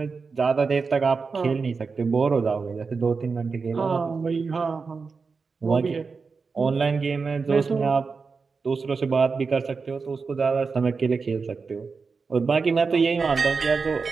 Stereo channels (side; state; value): left; quieter; 4.8 dB